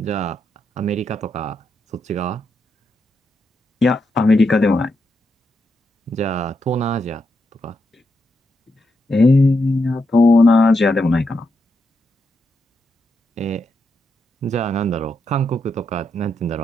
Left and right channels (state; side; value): normal; both; correlation 0.82